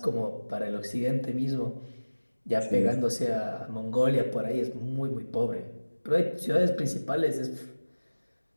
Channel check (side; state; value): both; inverted; correlation -1.00